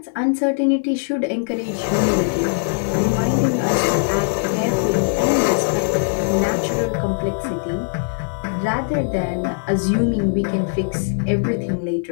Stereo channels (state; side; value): silent; right; 58 dB below the other